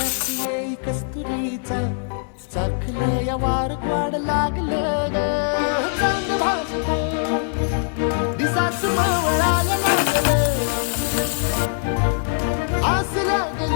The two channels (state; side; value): silent; right; digital silence